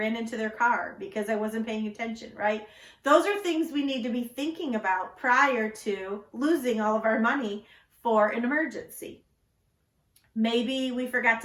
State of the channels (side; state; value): both; identical; correlation 1.00